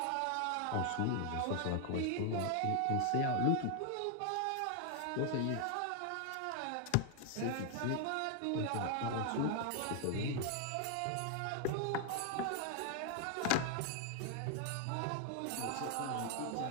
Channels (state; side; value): different; both; correlation 0.00